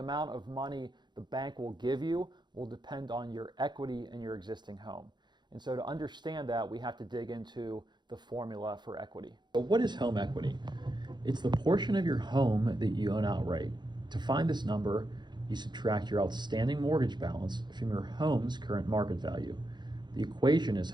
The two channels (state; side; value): late; left; 0.21 ms